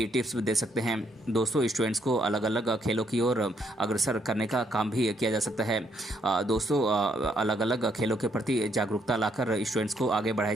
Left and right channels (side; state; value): both; normal; correlation 0.72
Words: टिप्स भी दे सकते हैं। दोस्तों स्टूडेंट्स को अलग अलग खेलों की ओर अग्रसर करने का काम भी किया जा सकता है। दोस्तों अलग अलग खेलों के प्रति जागरूकता लाकर स्टूडेंट्स को आगे बढ़ाया